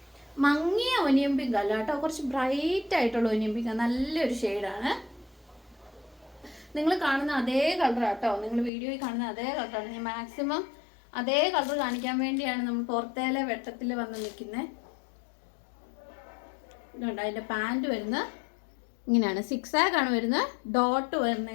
മങ്ങിയ ഒനിയൻ പിങ്ക് അല്ല കേട്ടോ, കുറച്ച് ബ്രൈറ്റ് ആയിട്ടുള്ള ഒനിയൻ പിങ്ക്. നല്ലൊരു ഷെയ്ഡാണ്. നിങ്ങൾ കാണുന്ന അതേ കളർ കേട്ടോ, നിങ്ങൾ വീഡിയോയിൽ കാണുന്ന അതേ കളറാണ്. ഞാൻ മാക്സിമം അതേ കളർ കാണിക്കാൻ വേണ്ടിയാണ് നമ്മൾ പുറത്തേലെ വെട്ടത്തിൽ വന്ന് നിൽക്കുന്നത്. ഇതുണ്ട്, അതിൻ്റെ പാൻറ് വരുന്നത് ഇങ്ങനെയാണ്. 6 ആക്കാണ് വരുന്നത്. ഡോട്ട്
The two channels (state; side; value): drops out; right; at 8.7 s